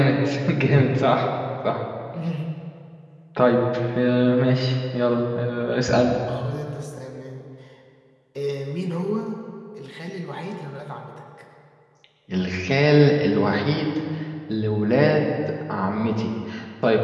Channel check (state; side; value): identical; both; correlation 1.00